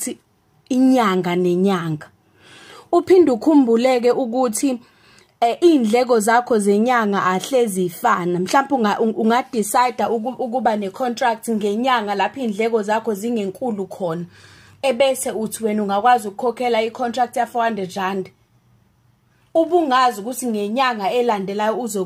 inyanga nenyanga. Uphinde ukhumbuleke ukuthi indleko zakho zenyanga ahlezi ifana. Mhlawumbe ungadecide ukuba ne-contract ngenyanga lapho indleko zakho zingenkulu khona. Ebese uthi wena ungakwazi ukukhokhela i-contract ya 400 rand. Ubungazi ukuthi ngenyanga elandelayo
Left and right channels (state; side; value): identical; both; correlation 1.00